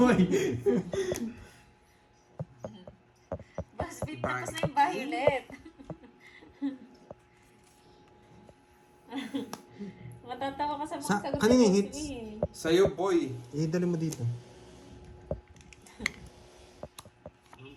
Basbit, tapos na yung violet. Matatawa ka sa mga Sa- sagot kanina ni hits? Boss B. Sa'yo, boy. Dali mo dito. Ang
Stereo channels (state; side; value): identical; both; correlation 1.00